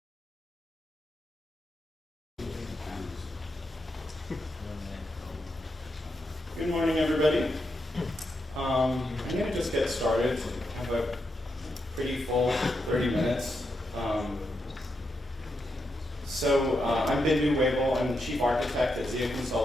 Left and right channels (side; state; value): both; normal; correlation 0.84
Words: morning, everybody. I'm going to just get started. I have a pretty full 30 minutes. I'm Bindu Wavell. I'm the chief architect at SDK